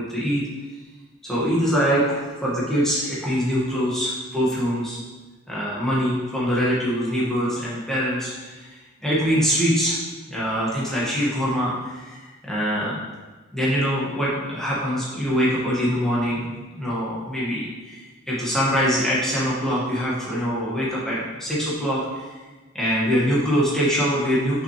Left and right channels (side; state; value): both; normal; correlation 0.55